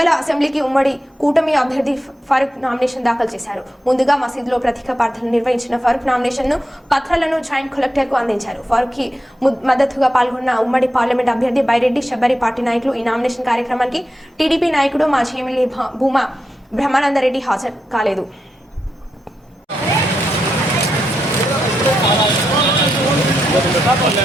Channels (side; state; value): both; normal; correlation 0.86